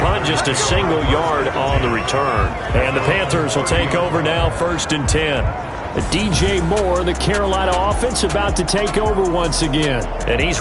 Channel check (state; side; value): identical; both; correlation 1.00